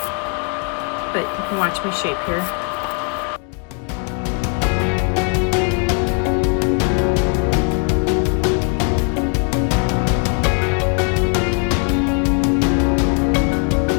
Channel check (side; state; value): right; quieter; 37.4 dB